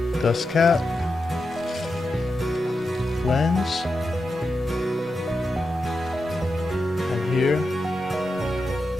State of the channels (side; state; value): both; normal; correlation 0.88